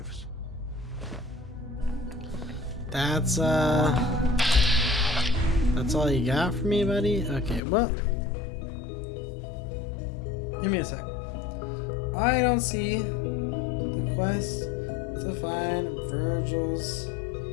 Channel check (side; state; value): right; drops out; at 7.6 s